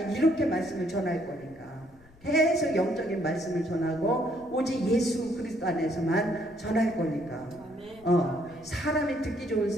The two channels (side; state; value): left; noise; rumble, 26 dB below the sound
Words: 이렇게 말씀을 전할 거니까 계속 영적인 말씀을 전하고 오직 예수 그리스도 안에서만 전할 거니까 사람이 듣기 좋은